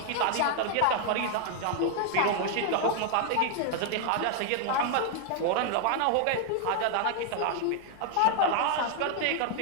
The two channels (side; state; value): both; different; correlation 0.00